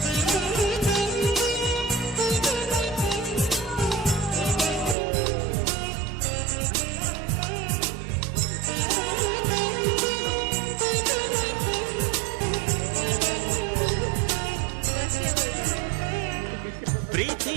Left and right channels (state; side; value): drops out; left; at 5.0 s